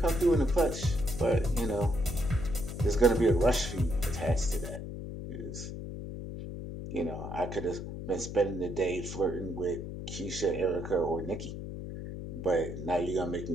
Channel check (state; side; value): noise; left; hum, 8 dB below the sound